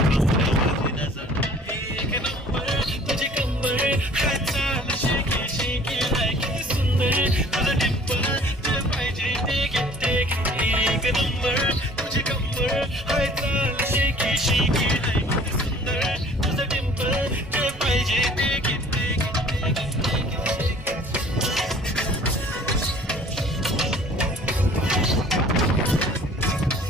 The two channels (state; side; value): normal; both; correlation 0.51